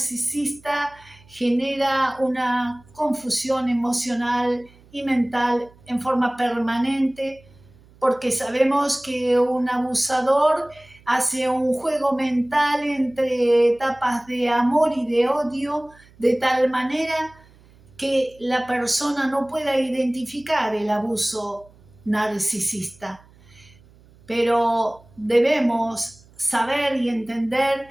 genera una confusión emocional y mental en forma permanente, porque sabemos que un abusador hace un juego mental entre etapas de amor y de odio, de tal manera que la persona no pueda identificar el abuso narcisista. Pero debemos saber y entender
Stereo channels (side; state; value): right; noise; hum, 27 dB below the sound